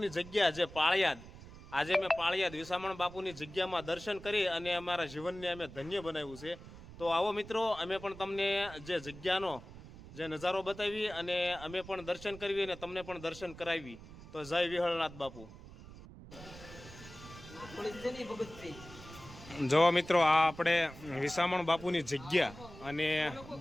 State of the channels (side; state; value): right; noise; rumble, 16 dB below the sound